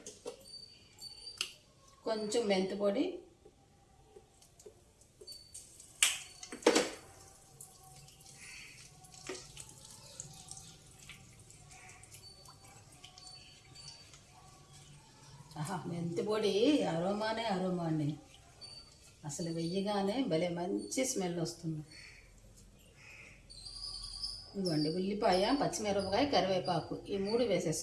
కొంచెం మెంతి పొడి, మెంతి పొడి అరోమా అండి. అసలు వెయ్యగానే భలే మంచి స్మెల్ వస్తుంది. ఇదిగోండి ఉల్లిపాయ, పచ్చిమిరపకాయ, కరివేపాకు ఈ 3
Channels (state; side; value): identical; both; correlation 1.00